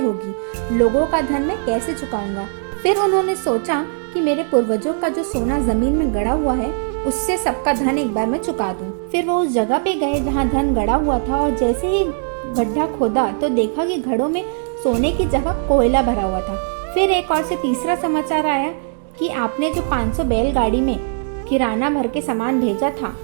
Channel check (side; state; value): left; silent; 64 dB below the other